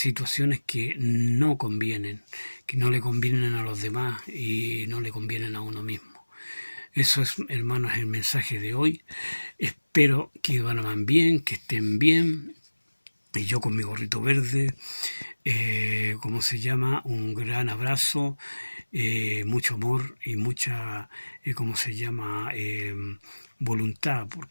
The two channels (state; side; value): inverted; both; correlation -1.00